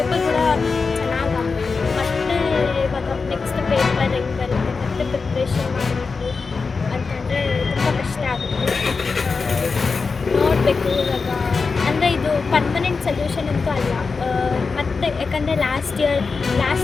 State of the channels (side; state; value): right; quieter; 4.6 dB